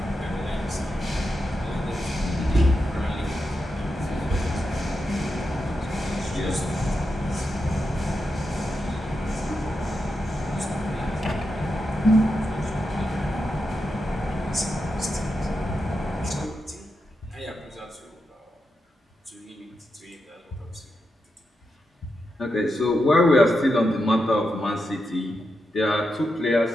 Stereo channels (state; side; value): normal; both; correlation 0.87